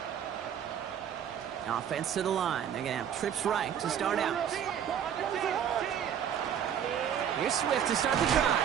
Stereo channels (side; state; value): left; quieter; 8.9 dB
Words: Offense to the line. They're going to have trips right to start out. Here's Swift to start the